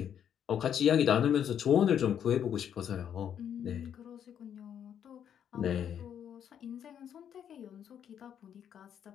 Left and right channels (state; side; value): quieter; right; 9.0 dB